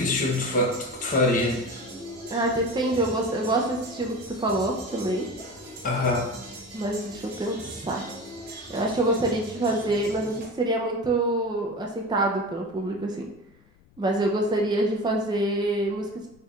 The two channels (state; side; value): noise; left; rumble, 30 dB below the sound